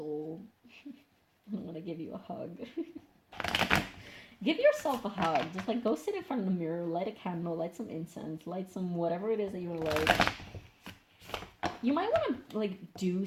I want to give you a hug. Give yourself a hug. Just like go sit in front of the mirror, light a candle, light some incense, light some whatever it is that you want to light. You might want to like do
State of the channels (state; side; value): identical; both; correlation 1.00